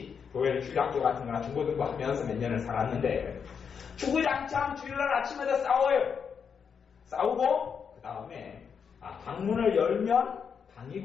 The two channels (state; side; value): quieter; right; 6.7 dB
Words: 교회를 주일학교 같은 거나 중고등부 하면서 몇 년을 살았는데 주구장창 주일날 아침에도 싸워요. 싸우고 그 다음에 방문을 열면